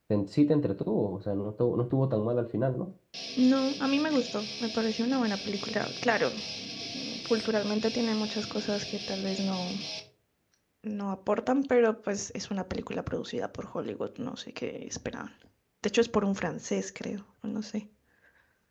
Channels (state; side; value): identical; both; correlation 1.00